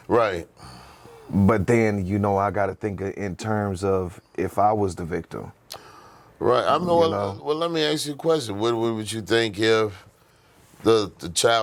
right? But then I got to think in terms of if I was the victim, right? Well, let me ask you a question. What would you think if the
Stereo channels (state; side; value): identical; both; correlation 1.00